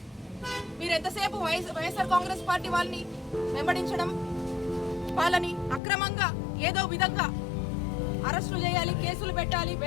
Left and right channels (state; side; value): drops out; right; at 5.8 s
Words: మీరు ఎంతసేపు వైఎస్ఆర్ కాంగ్రెస్ పార్టీ వాళ్ళని వెంబడించడం, వాళ్ళని అక్రమంగా ఏదో విధంగా అరెస్టులు చేయాలి, కేసులు పెట్టాలి,